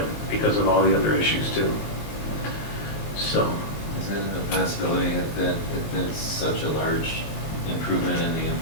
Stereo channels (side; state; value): right; late; 19 ms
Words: because of all the other issues too. So, Is it a possibility if it's such a large improvement in the